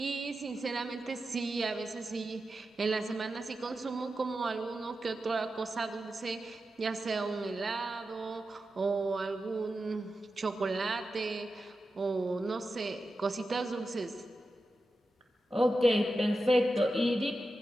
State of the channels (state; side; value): normal; both; correlation 0.91